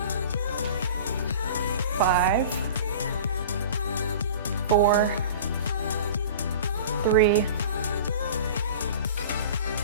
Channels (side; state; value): both; inverted; correlation -0.39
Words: 5, 4, 3,